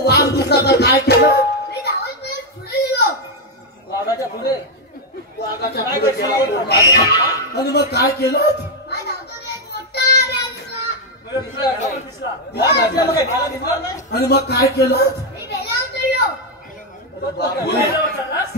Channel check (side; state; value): both; normal; correlation 0.02